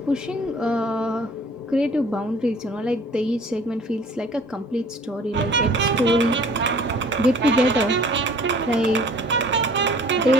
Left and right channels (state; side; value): normal; both; correlation 0.51